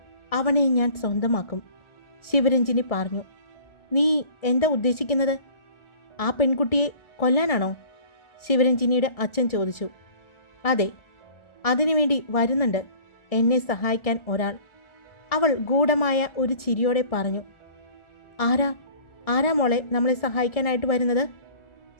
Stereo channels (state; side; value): late; right; 1.4 ms